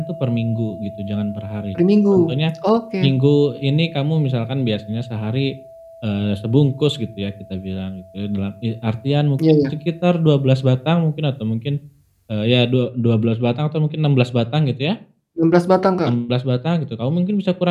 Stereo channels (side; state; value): both; identical; correlation 1.00